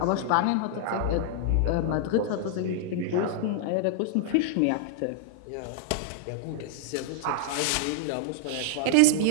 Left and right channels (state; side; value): different; both; correlation -0.01